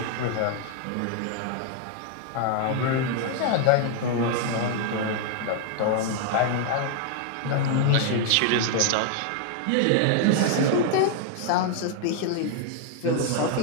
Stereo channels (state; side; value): different; both; correlation 0.00